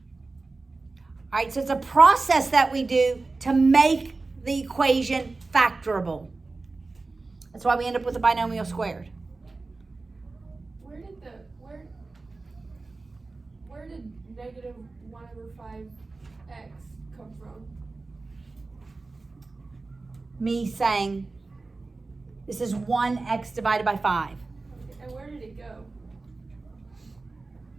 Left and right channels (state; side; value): quieter; left; 3.6 dB